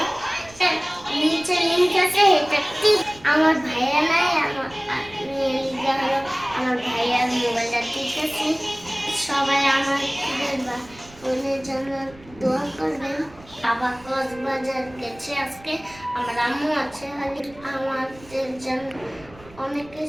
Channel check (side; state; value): right; noise; rumble, 22 dB below the sound